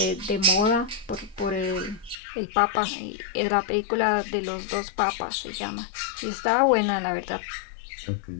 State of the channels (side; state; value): right; drops out; at 2.1 s